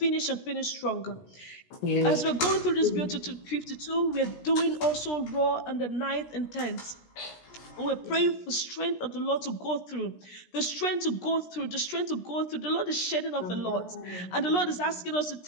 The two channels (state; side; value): late; right; 17 ms